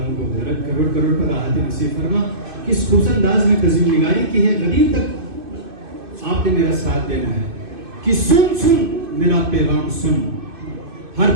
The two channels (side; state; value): left; late; 2.5 ms